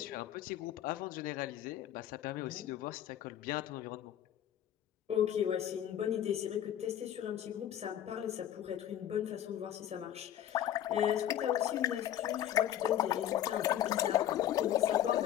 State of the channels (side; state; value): right; quieter; 11.3 dB